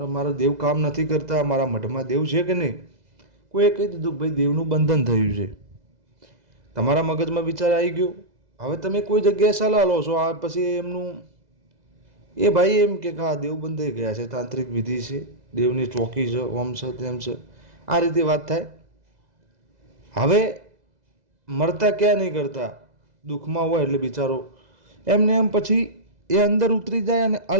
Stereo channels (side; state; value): left; late; 2.0 ms